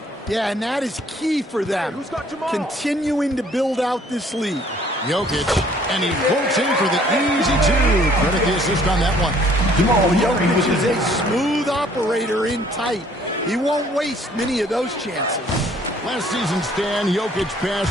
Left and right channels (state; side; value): normal; both; correlation 0.59